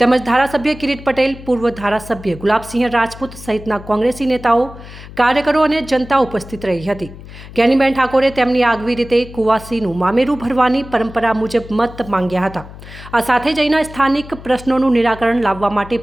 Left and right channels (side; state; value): left; noise; hum, 16 dB below the sound